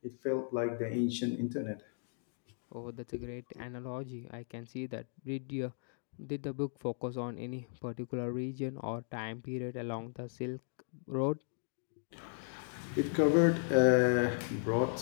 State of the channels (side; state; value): right; silent; digital silence